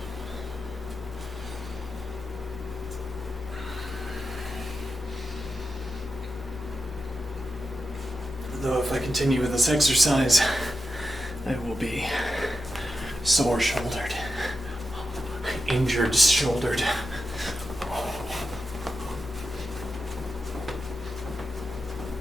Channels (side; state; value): both; normal; correlation 0.89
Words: Though if I continue with this exercise, I will be sore-shouldered, injured-shouldered.